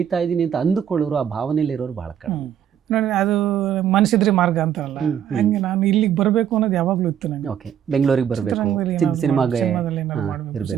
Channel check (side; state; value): left; quieter; 9.5 dB